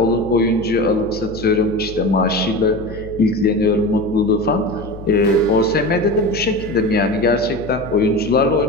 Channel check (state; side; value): noise; left; hum, 14 dB below the sound